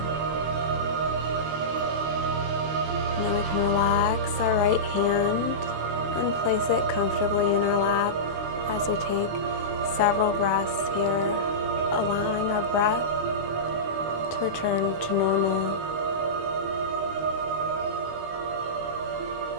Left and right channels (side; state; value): left; late; 18 ms